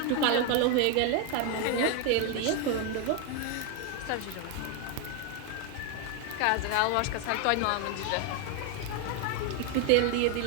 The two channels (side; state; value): both; different; correlation 0.01